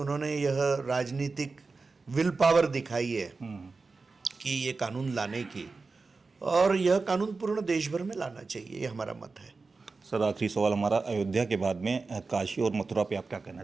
यह राजनीतिक विल पावर दिखाई है कि ये कानून लाने की, और यह कानून पूर्ण देश भर में लाना चाहिए, ये हमारा मत है। सर, आखिरी सवाल हमारा, अयोध्या के बाद में काशी और मथुरा पे आप क्या कहना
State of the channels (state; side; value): quieter; left; 4.1 dB